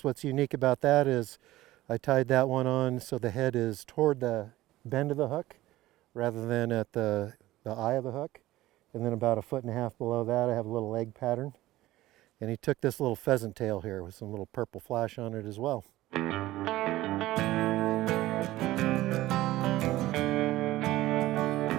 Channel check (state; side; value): quieter; left; 16.5 dB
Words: what's unique about that is I tied that one on so the head is toward the bend of the hook rather than at the eye of the hook. And then about 1.5 feet below that I have a little leg pattern. And he took this little pheasant tail here with some little purple flash on it as well.